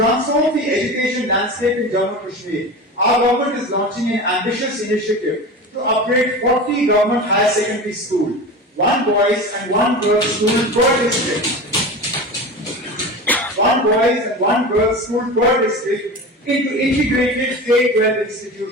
the education landscape in Jammu and Kashmir, our government is launching an ambitious initiative to upgrade 40 government higher secondary schools, one boys and one girls school per district. One boys and one girls school per district into integrated K-12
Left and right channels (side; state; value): both; normal; correlation 0.30